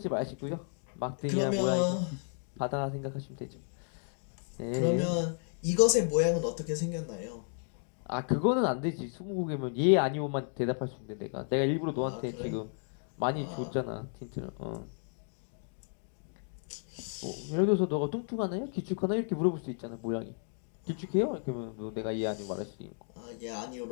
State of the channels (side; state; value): right; silent; 56 dB below the other